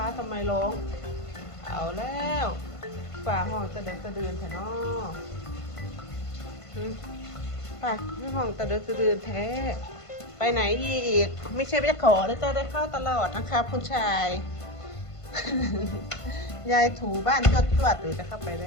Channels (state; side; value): late; right; 1.5 ms